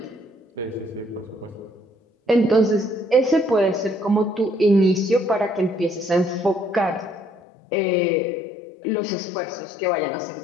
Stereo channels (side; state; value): right; drops out; at 7.4 s